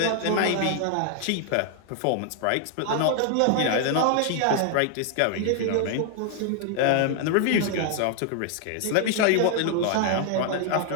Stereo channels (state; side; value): different; both; correlation 0.00